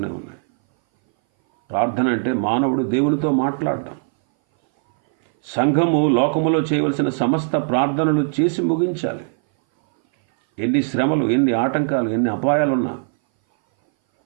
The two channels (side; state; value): left; silent; 60 dB below the other